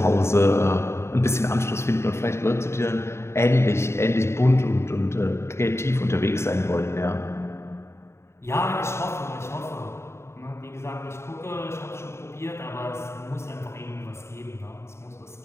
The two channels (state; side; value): late; right; 0.13 ms